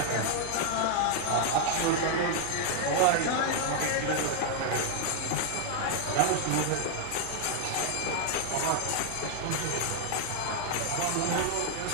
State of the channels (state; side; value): different; both; correlation 0.00